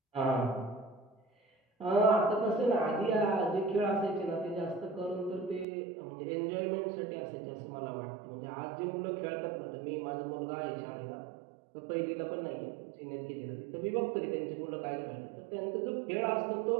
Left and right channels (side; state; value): left; drops out; at 5.7 s